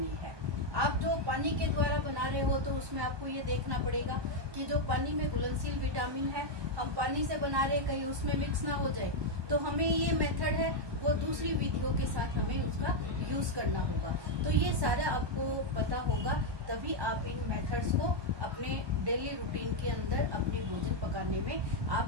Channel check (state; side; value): late; left; 1.2 ms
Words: है। आप जो पानी के द्वारा बना रहे हो तो उसमें आपको ये देखना पड़ेगा कि जो पानी में घुलनशील विटामिन है हम पानी से बना रहे, कहीं उसमें मिक्स ना हो जाए। तो हमें ये मेथड है वो दूसरी विधियों के साथ हमें उसका यूज करना होगा। तो ये सारा आपको पता होगा, तभी आप इन मेथड्स को अपने डेली रूटीन के अंदर अपने भोजन पकाने में